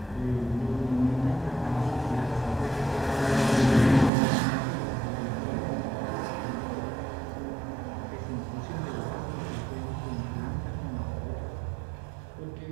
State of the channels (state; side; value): drops out; left; at 4.1 s